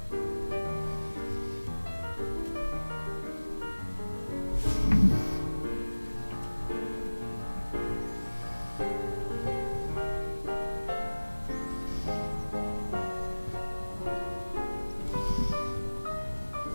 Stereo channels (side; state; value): both; inverted; correlation -1.00